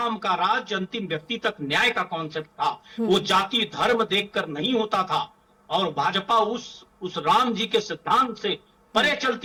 का राज्य अंतिम व्यक्ति तक न्याय का कॉन्सेप्ट था, वो जाति धर्म देखकर नहीं होता था। और भाजपा उस राम जी के सिद्धांत से परे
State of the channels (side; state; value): both; identical; correlation 1.00